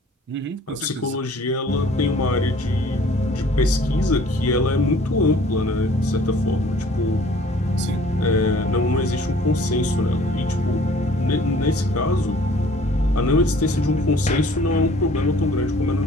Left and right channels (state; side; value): normal; both; correlation 0.53